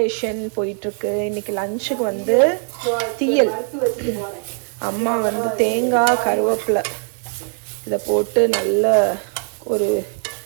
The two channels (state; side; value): silent; left; 56 dB below the other